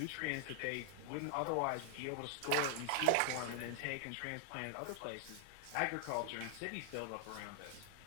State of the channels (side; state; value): both; different; correlation 0.00